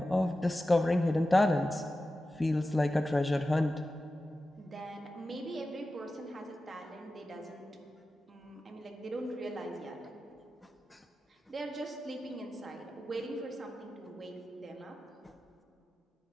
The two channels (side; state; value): both; normal; correlation 0.93